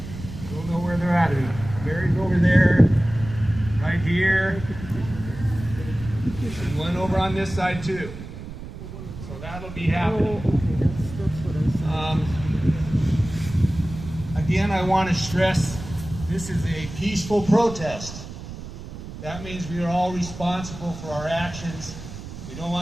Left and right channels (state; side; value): noise; right; rumble, 11 dB below the sound